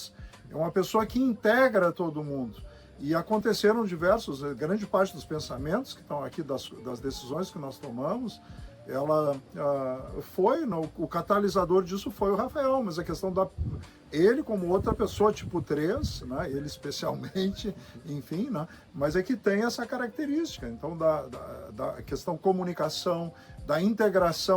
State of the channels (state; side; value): identical; both; correlation 1.00